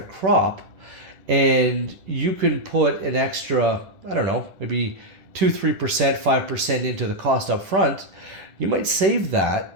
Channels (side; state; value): left; late; 11 ms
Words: crop and you can put an extra, I don't know, maybe 2-3%, 5% into the cost up front, you might save that